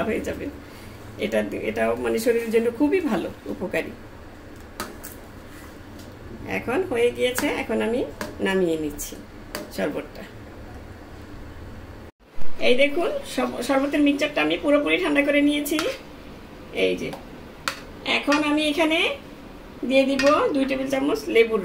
হয়ে যাবে। এটাও মানে শরীরের জন্য খুবই ভালো, উপকারী। এখন হয়ে গিয়েছে, এখন আমি নামিয়ে নিচ্ছি শরবতটা। এই দেখুন শরবতের মিক্সচারটা আমি পুরোপুরি ঠান্ডা করে নিয়েছি। এই যে এখন আমি এখানে দিয়ে দিব 2 টেবিল চামচ লেবুর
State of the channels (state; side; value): identical; both; correlation 1.00